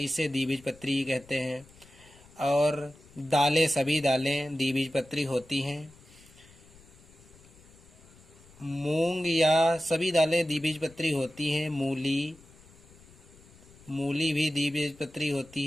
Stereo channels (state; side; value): noise; left; rumble, 24 dB below the sound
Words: द्विबीजपत्री कहते हैं। और सभी दालें द्विबीजपत्री होती हैं। मूंग या सभी दालें द्विबीजपत्री होती हैं। मूली भी द्विबीजपत्री होती